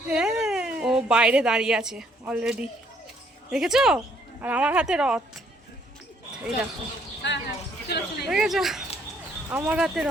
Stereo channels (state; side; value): normal; both; correlation 0.66